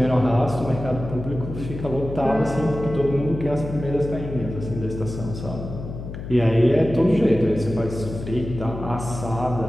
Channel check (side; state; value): left; noise; hum, 9 dB below the sound